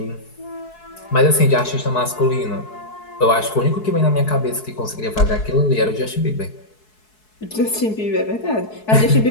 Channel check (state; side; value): late; right; 4.7 ms